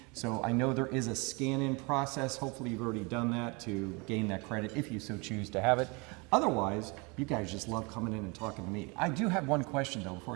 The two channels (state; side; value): quieter; left; 29.0 dB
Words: So I know there is a scan-in process. Hopefully you've already done that to gain that credit if you so choose to have it. Otherwise, you guys just love coming in and talking to me. I do have one question, though, before